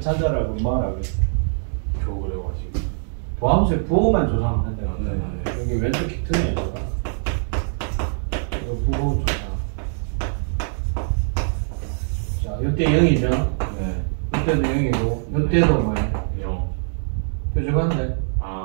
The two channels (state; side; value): silent; left; 64 dB below the other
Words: 찾아라고 뭐라고 했어? 겨우 그래가지고. 도함수의 부호만 조사하면 된다. 네. 여기 왼쪽 키트네 이거. 이거 부호 조사. 자 이때 0이죠. 네. 이때도 0이고 이때도 뭐예요? 0. 뾰족한데.